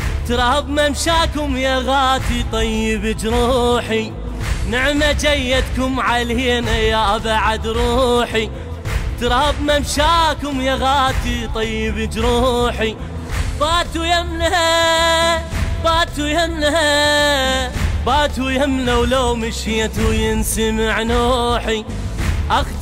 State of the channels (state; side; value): identical; both; correlation 1.00